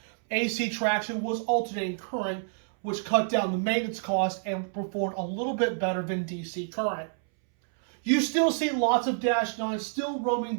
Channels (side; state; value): left; silent; 59 dB below the other